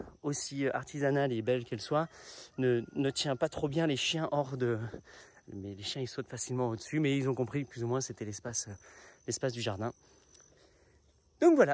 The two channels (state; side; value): identical; both; correlation 1.00